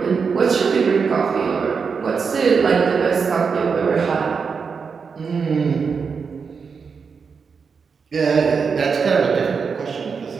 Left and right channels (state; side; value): quieter; left; 5.6 dB